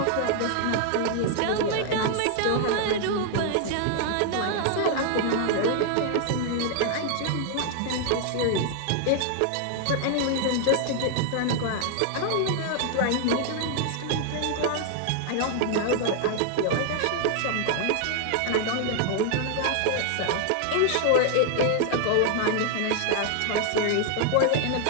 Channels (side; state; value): both; different; correlation 0.00